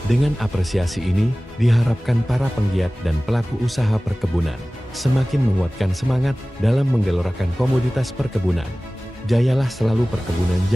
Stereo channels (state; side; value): normal; both; correlation 0.98